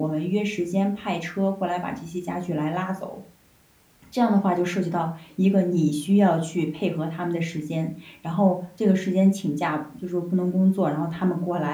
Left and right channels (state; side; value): identical; both; correlation 1.00